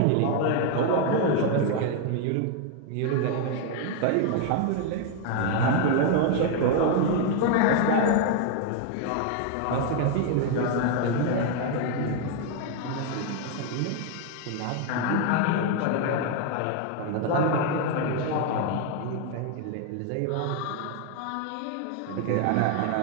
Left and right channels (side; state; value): both; different; correlation 0.01